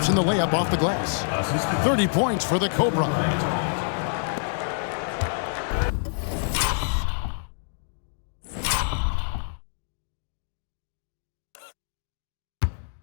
in the layup off the glass. 30 points for the Cobra.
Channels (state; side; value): silent; right; digital silence